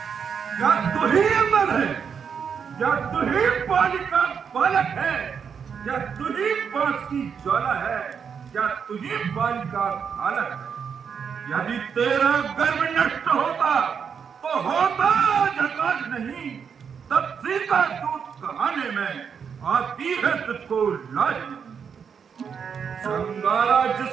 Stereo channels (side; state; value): left; quieter; 6.8 dB